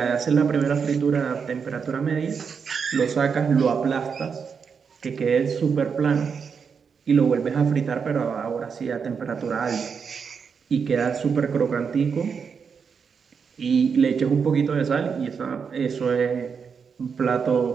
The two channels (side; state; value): left; quieter; 6.1 dB